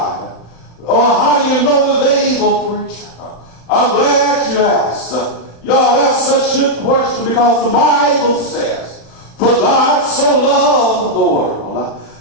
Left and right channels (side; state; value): right; late; 35 ms